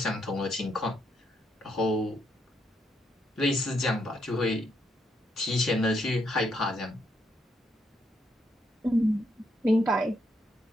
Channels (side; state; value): both; normal; correlation 0.77